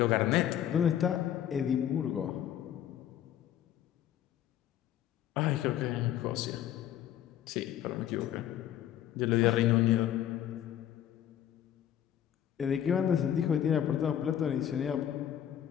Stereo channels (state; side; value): quieter; right; 10.7 dB